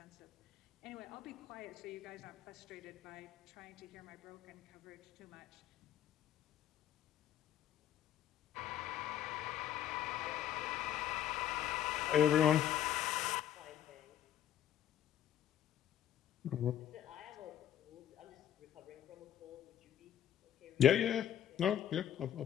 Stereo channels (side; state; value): right; quieter; 10.7 dB